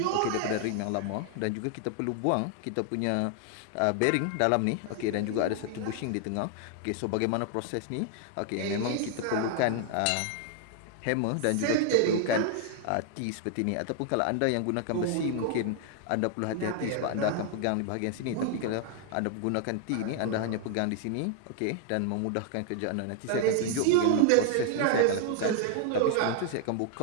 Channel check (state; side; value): different; both; correlation 0.00